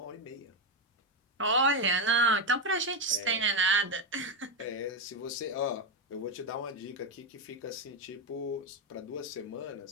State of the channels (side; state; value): both; normal; correlation 0.08